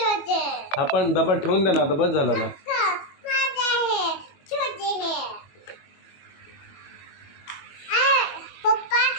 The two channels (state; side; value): late; right; 21 ms